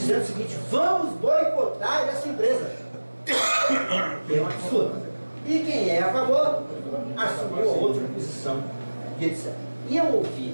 o seguinte: vamos boicotar essa empresa. Que é um absurdo. E quem é a favor assumiu a outra posição. E etc. E eu ouvi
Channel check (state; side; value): inverted; both; correlation -1.00